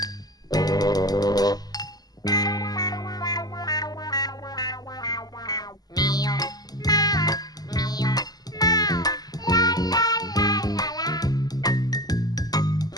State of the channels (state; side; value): late; right; 0.19 ms